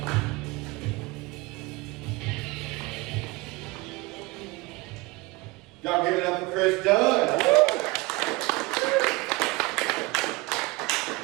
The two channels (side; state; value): left; quieter; 23.7 dB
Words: Y'all give it up for Chris Dunn.